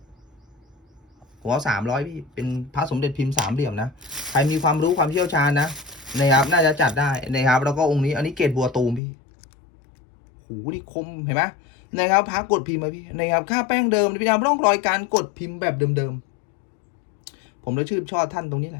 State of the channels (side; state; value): right; drops out; at 9.0 s